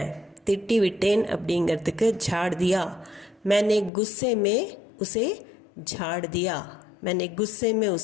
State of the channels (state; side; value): drops out; right; at 3.9 s